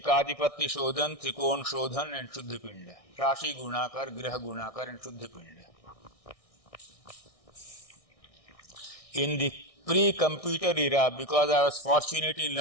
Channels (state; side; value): late; right; 1.6 ms